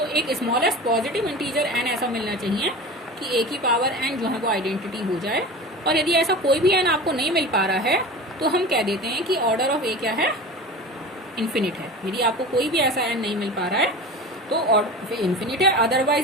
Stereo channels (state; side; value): normal; both; correlation 0.33